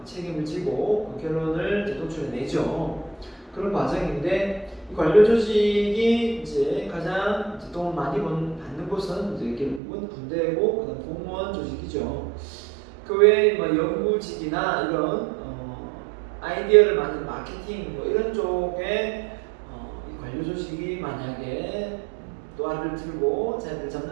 책임을 지고 그 결론을 도출해내죠. 그런 과정인데 이 관료 조직이 이제 가장 돈 많이 받는 곳은 이제 결국은 군대고 그다음 공무원 조직이죠. 그 외에 연구직이나 이런 아이디어를 만든 마케팅 이런 쪽에 이 관료 조직이 만약에 노하를 들고 자리를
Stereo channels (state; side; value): drops out; left; at 9.8 s